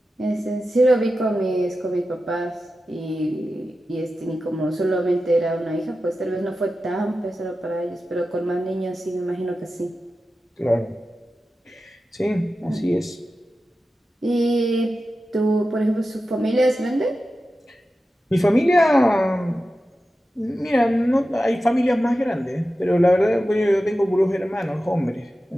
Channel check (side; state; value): both; normal; correlation 0.93